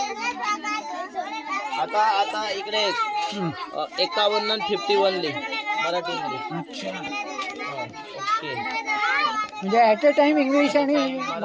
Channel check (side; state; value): both; identical; correlation 1.00